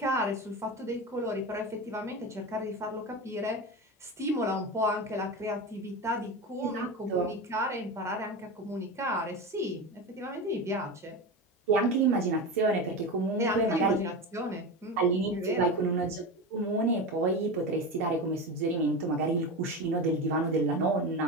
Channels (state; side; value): normal; both; correlation 0.23